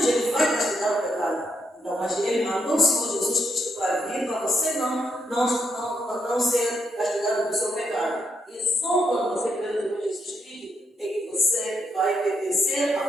ele vai castigar o pecado. Então, mas ele mandou o Senhor Jesus Cristo para vir, para você não ser castigado do seu pecado. E só quando você crê no Senhor Jesus Cristo é que você vai pertencer à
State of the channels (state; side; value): normal; both; correlation 0.78